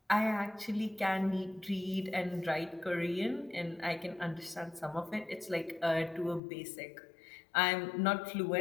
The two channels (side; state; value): right; drops out; at 6.4 s